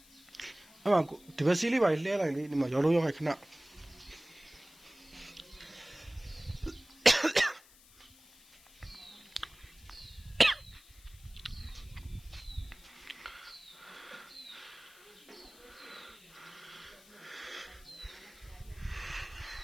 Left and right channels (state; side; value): noise; left; hiss, 24 dB below the sound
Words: အဲ့မှာဒီဘက်စီးလေးပါလှဲလိုက်လေဒီမှာရောလုံးရောက်ခိုက်ခဏ